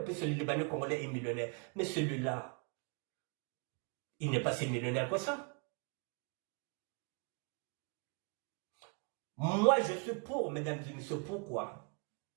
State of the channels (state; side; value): quieter; left; 35.9 dB